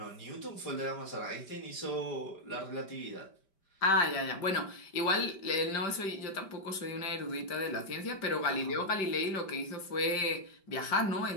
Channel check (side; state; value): right; late; 5.1 ms